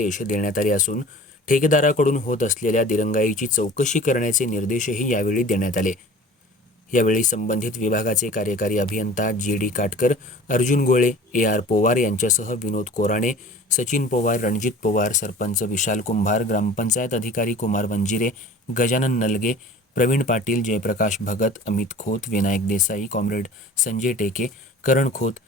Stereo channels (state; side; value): normal; both; correlation 0.43